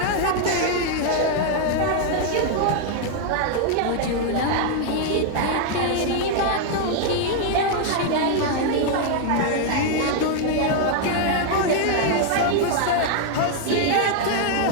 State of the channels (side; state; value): both; different; correlation 0.00